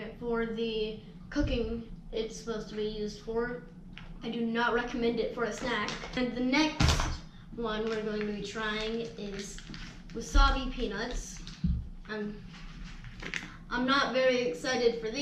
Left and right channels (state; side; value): identical; both; correlation 1.00